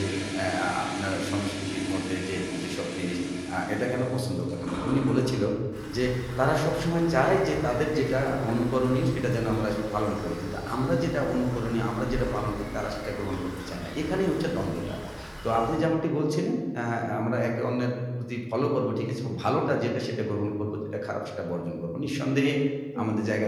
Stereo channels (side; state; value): both; identical; correlation 1.00